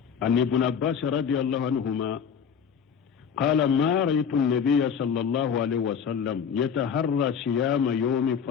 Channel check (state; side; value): quieter; right; 7.1 dB